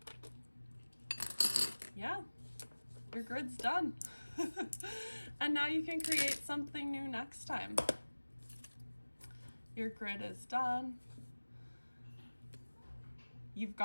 yeah, your grid's done. And now you can create something new next time. Your grid is done. You've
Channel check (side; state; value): both; inverted; correlation -1.00